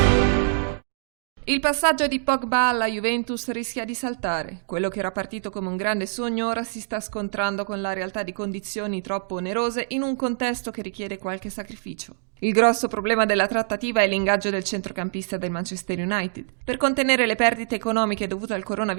Il passaggio di Pogba alla Juventus rischia di saltare. Quello che era partito come un grande sogno ora si sta scontrando con la realtà di condizioni troppo onerose in un contesto che richiede qualche sacrificio. Il grosso problema della trattativa è l'ingaggio del centrocampista del Manchester United. Per contenere le perdite economiche dovute al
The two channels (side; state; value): left; silent; digital silence